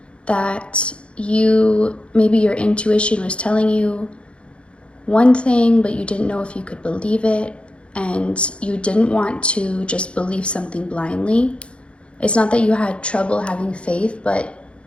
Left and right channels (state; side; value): late; right; 0.058 ms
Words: that maybe your intuition was telling you one thing, but you didn't know if you could believe it, and you didn't want to just believe something blindly. It's not that you had trouble having faith, but